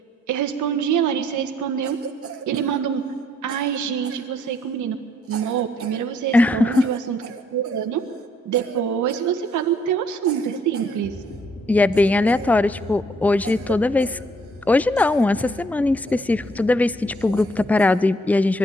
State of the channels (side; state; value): both; normal; correlation 0.66